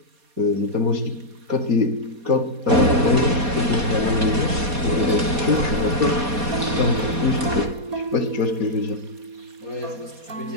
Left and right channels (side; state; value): left; late; 4.2 ms